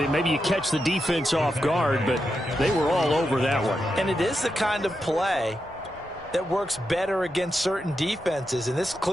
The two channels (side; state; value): left; noise; rumble, 22 dB below the sound